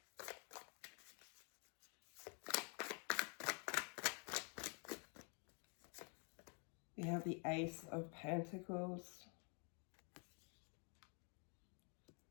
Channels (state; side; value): quieter; right; 37.7 dB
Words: We have the Ace of Pentacles.